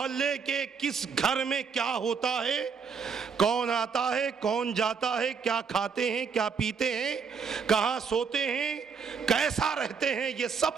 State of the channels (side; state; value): left; quieter; 5.9 dB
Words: کے کس گھر میں کیا ہوتا ہے، کون آتا ہے، کون جاتا ہے، کیا کھاتے ہیں، کیا پیتے ہیں، کہاں سوتے ہیں، کیسا رہتے ہیں، یہ